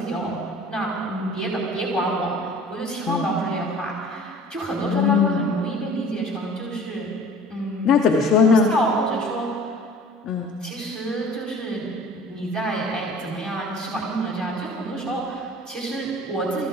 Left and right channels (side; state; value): both; normal; correlation 0.47